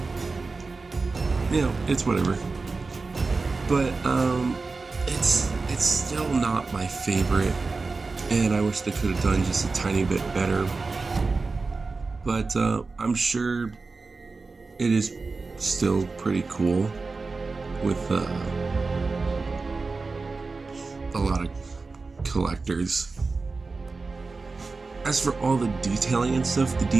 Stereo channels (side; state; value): left; quieter; 4.0 dB